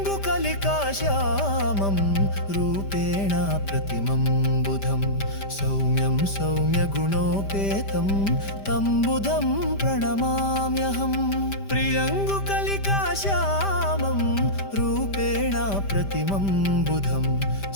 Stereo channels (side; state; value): right; late; 5.0 ms